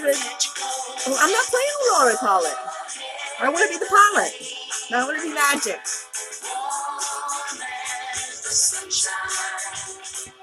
I'm not playing on autopilot. I want to be the pilot. I want to be magic.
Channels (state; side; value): identical; both; correlation 1.00